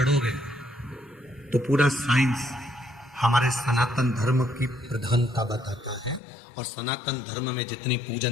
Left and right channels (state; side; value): drops out; right; at 6.2 s